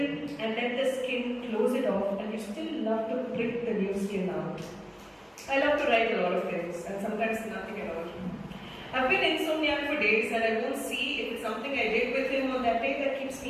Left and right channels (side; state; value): both; identical; correlation 1.00